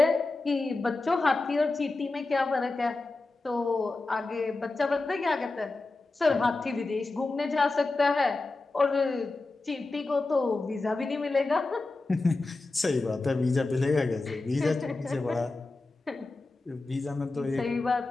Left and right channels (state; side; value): quieter; right; 3.4 dB